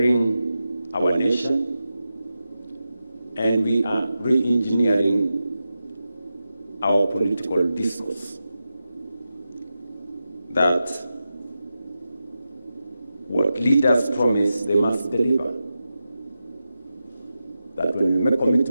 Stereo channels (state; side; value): inverted; both; correlation -0.91